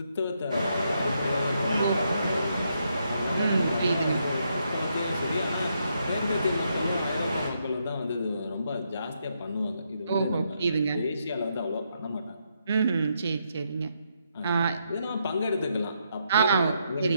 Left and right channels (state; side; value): inverted; both; correlation -0.78